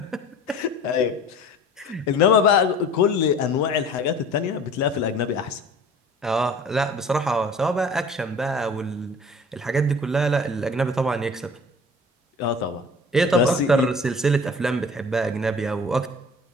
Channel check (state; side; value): normal; both; correlation 0.44